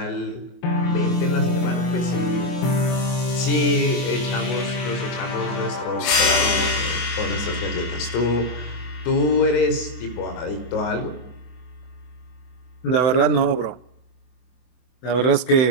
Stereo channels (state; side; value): late; right; 24 ms